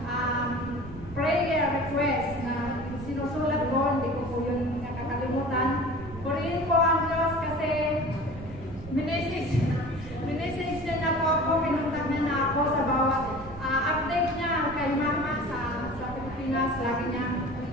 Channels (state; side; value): noise; right; rumble, 15 dB below the sound